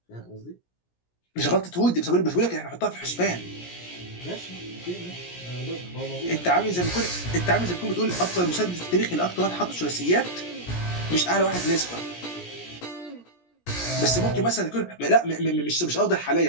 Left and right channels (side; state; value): right; late; 17 ms